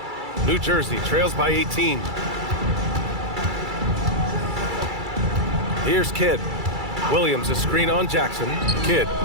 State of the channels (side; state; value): left; late; 2.3 ms